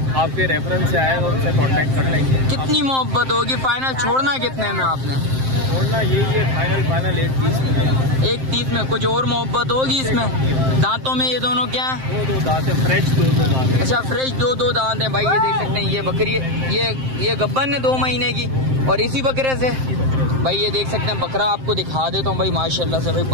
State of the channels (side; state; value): left; late; 7.6 ms